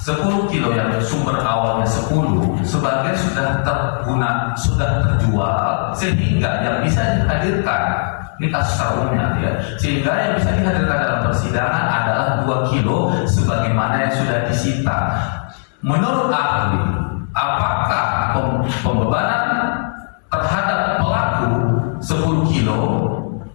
kilo yang sumber awalnya 10, sebagian sudah terguna, sudah terjual, sehingga yang bisa dihadirkan, ini kasus umumnya ya, sehingga yang bisa dihadirkan dalam persidangan adalah 2 kilo sebagaimana yang sudah disita. Menurut ahli, apakah pembebanan terhadap pelaku 10 kilo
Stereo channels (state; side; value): silent; right; digital silence